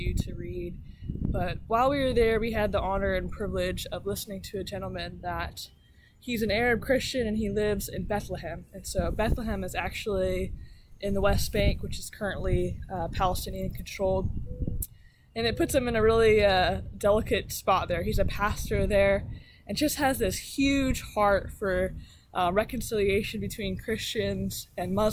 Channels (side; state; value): both; identical; correlation 1.00